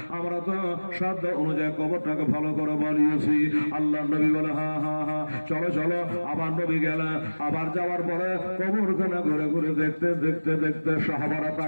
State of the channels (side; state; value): both; inverted; correlation -1.00